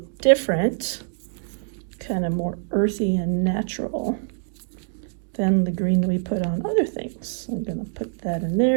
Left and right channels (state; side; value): silent; left; digital silence